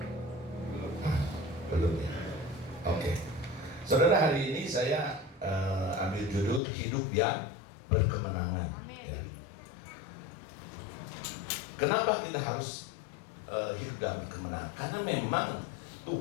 Ya. Belum ya. Oke. Saudara, hari ini saya ambil judul hidup yang berkemenangan. Ya. Kenapa kita harus hidup dalam kemenangan? Karena memang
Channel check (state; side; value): drops out; right; at 6.6 s